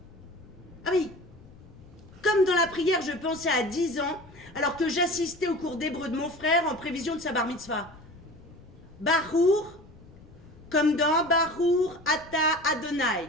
Ah oui, comme dans la prière je pensais à 10 ans, alors que j'assistais au cours d'hébreu de mon frère en prévision de sa bar mitzvah. Bahour, comme dans Bahour Ata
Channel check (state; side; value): noise; left; rumble, 22 dB below the sound